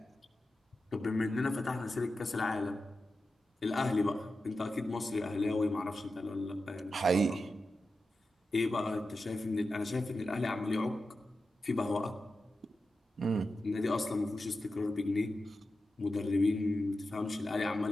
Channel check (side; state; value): both; normal; correlation 0.91